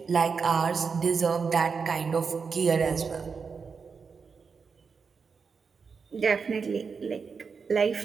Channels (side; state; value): left; quieter; 5.5 dB